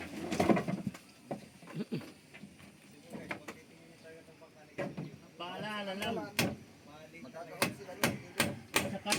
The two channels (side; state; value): both; identical; correlation 1.00